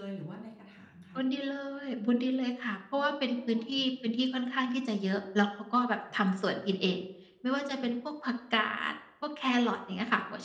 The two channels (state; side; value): identical; both; correlation 1.00